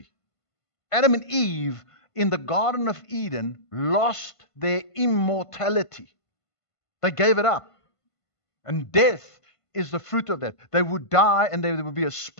Adam and Eve in the Garden of Eden lost their immortality. They gave it up. And death is the fruit of that. They would die, and there would be a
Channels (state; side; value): late; right; 1.5 ms